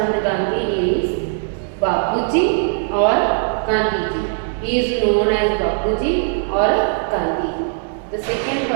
Gandhi is Bapuji or Gandhiji. He is known as Bapuji or Gandhi. The second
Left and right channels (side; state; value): left; silent; 66 dB below the other